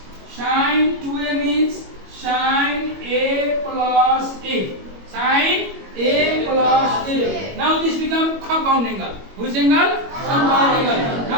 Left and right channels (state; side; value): late; left; 21 ms